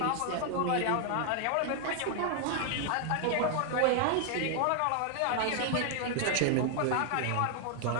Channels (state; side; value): different; both; correlation 0.00